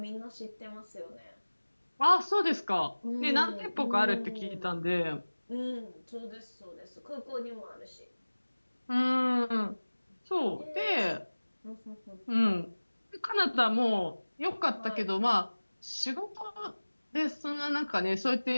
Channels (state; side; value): inverted; both; correlation -1.00